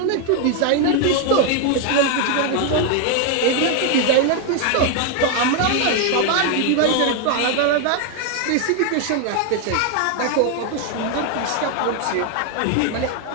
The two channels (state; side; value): different; both; correlation 0.01